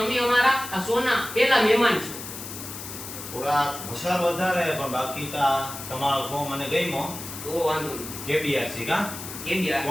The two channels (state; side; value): noise; left; hiss, 10 dB below the sound